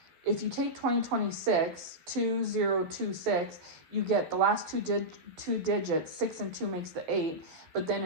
if you take 2026, 2026, you get the last two digits, 6 and 2 makes the 8. But then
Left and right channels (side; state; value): left; late; 12 ms